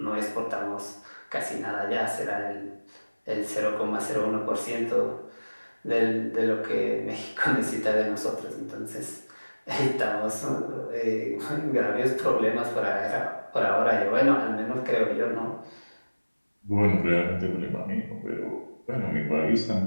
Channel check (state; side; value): inverted; both; correlation -1.00